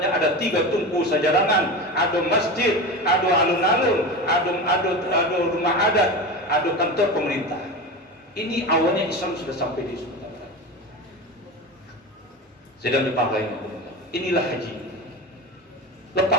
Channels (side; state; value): both; normal; correlation 0.26